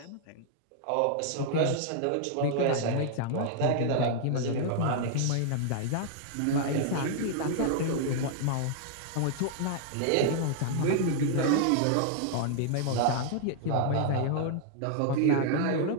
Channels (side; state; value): both; different; correlation -0.01